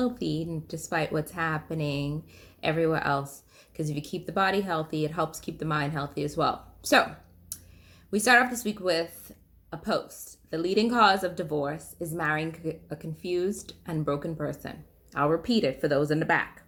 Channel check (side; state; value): both; identical; correlation 1.00